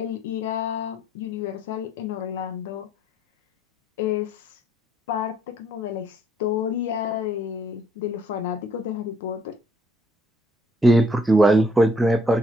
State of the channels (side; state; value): both; normal; correlation 0.66